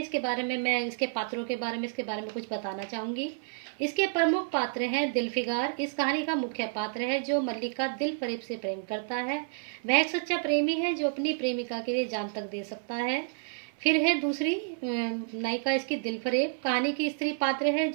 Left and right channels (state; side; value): silent; left; 58 dB below the other